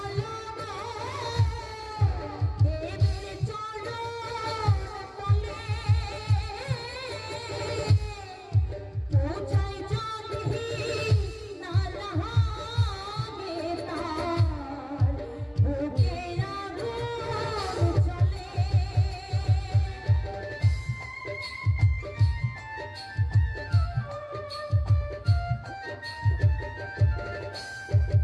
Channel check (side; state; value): both; identical; correlation 1.00